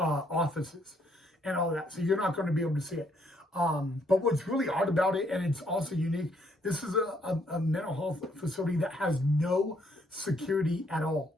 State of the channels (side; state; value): both; normal; correlation 0.70